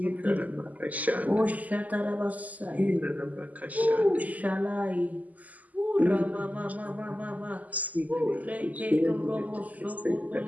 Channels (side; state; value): left; late; 0.077 ms